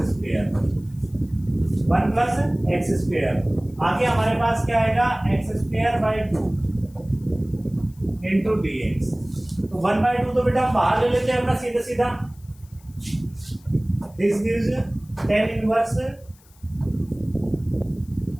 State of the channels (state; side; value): noise; left; hiss, 29 dB below the sound